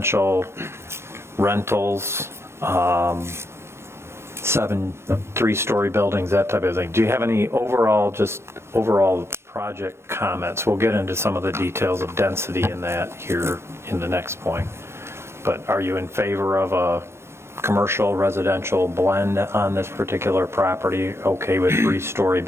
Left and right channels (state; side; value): late; left; 0.12 ms